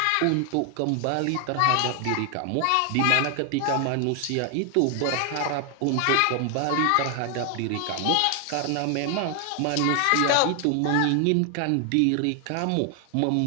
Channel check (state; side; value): different; both; correlation 0.00